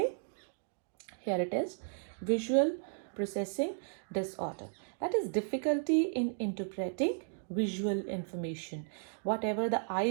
Here it is, visual processing disorder. That is difficulty in interpreting visual information. Whatever the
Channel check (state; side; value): silent; left; digital silence